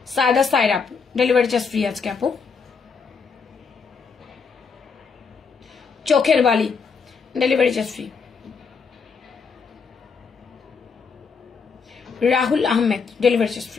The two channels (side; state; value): right; quieter; 5.4 dB